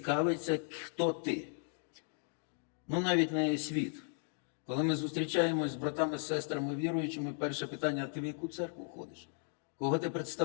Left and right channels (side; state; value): right; silent; 54 dB below the other